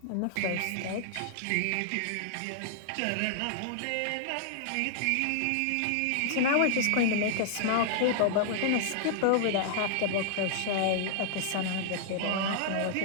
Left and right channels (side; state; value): both; different; correlation -0.01